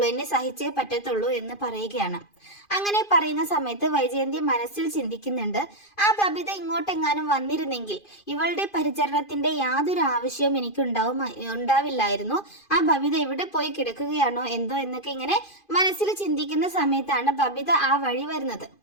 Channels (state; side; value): late; right; 2.5 ms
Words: എന്നെ സഹിച്ചേ പറ്റത്തുള്ളൂ എന്ന് പറയുകയാണ്. അങ്ങനെ പറയുന്ന സമയത്ത് വൈജയന്തി മനസ്സിൽ ചിന്തിക്കുന്നുണ്ട്, ആ ബബിത ഇങ്ങോട്ടെങ്ങാനും വന്നിരുന്നെങ്കിൽ ഇവളുടെ പരിചരണത്തിന്റെ യാതൊരു ആവശ്യവും എനിക്ക് ഉണ്ടാവില്ലായിരുന്നു. ആ ബബിത എവിടെ പോയി കിടക്കുകയാണോ എന്തോ എന്നൊക്കെ ഇങ്ങനെ മനസ്സിൽ ചിന്തിക്കുന്ന സമയത്താണ് ബബിത ആ വഴി വരുന്നത്.